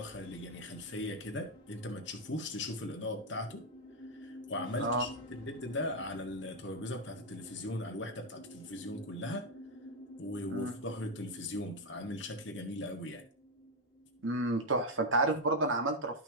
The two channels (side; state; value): both; normal; correlation 0.04